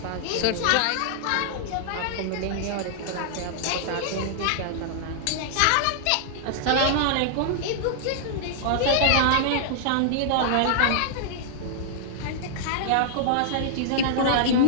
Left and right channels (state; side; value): different; both; correlation -0.01